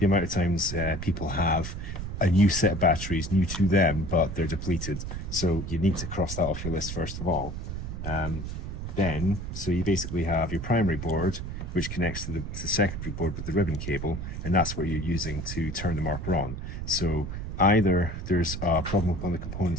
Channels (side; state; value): right; noise; rumble, 6 dB below the sound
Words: amount of times people have a new set of batteries, new to them, but they're depleted. So you need to cross that off your list first of all. So you basically have your primary board, which connects to the secondary board with the ribbon cable, and that's what you're using to turn the marker on. So either there's a problem with one of the